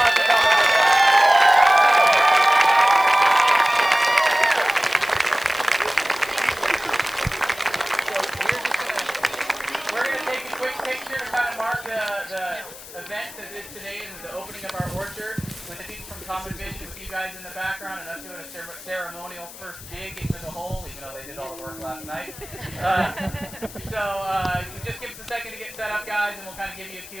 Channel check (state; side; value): noise; left; hiss, 16 dB below the sound